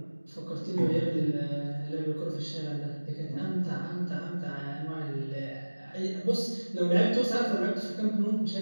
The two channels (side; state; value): both; inverted; correlation -1.00